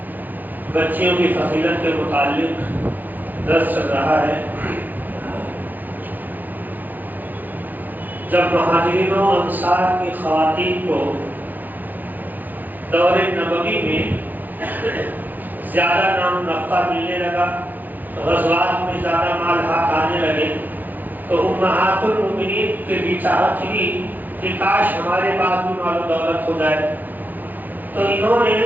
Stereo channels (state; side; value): late; left; 0.086 ms